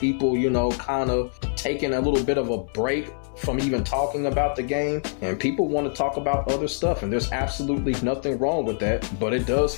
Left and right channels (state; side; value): silent; right; digital silence